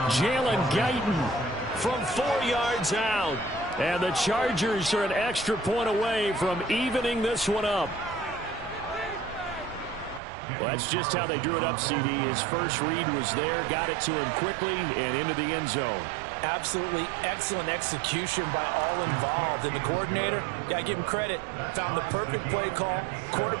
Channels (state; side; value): drops out; left; at 10.2 s